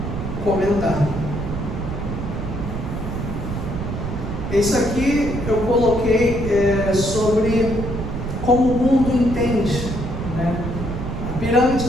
comentar. Isso aqui eu coloquei sobre como o mundo entende, né? A pirâmide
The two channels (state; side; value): noise; right; rumble, 5 dB below the sound